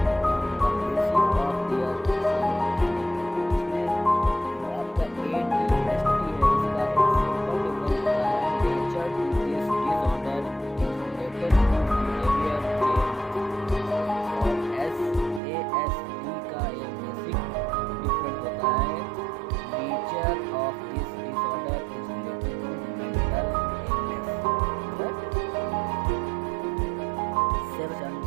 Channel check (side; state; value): left; drops out; at 15.4 s